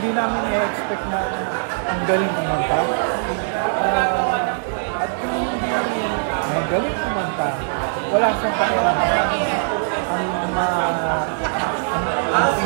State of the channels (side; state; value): left; silent; digital silence